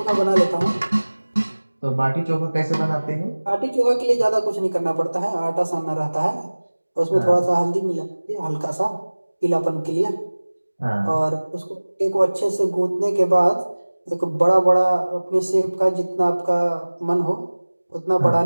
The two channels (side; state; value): both; inverted; correlation -1.00